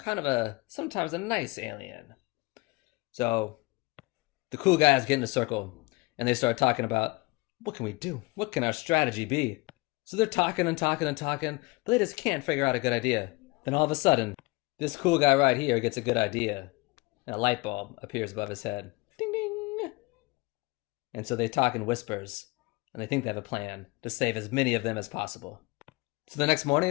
of sometimes a nice alien. So the cool guys get in a circle and they start talking about, what can we do? What can our strategy be? So they're talking and talking and talking, but they just can't figure out a good idea. Then all of a sudden, this cool guy right here gets a good idea, and a light bulb appears above his head. Ding ding! And so they talk in whispers, and they think they have a plan to save as many of them as possible. So the next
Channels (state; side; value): quieter; right; 24.7 dB